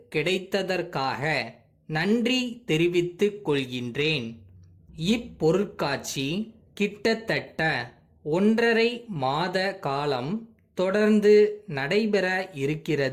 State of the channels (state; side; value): identical; both; correlation 1.00